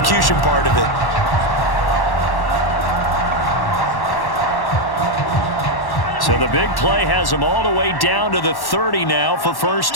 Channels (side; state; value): right; late; 1.1 ms